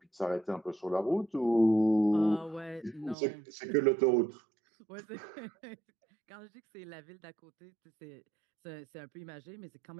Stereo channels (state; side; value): drops out; left; at 3.2 s